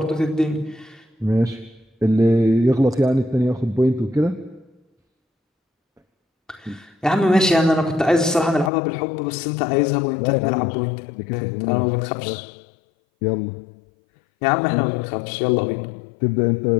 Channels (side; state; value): right; drops out; at 8.7 s